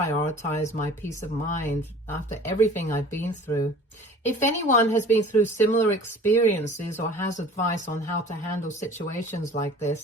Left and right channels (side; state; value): both; normal; correlation 0.45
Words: my peace of mind after everything I've been through. If anyone has been through similar experiences or has advice on how to handle situations like